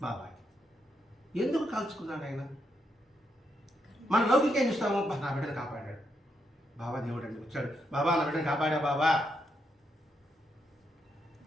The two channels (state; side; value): normal; both; correlation 0.80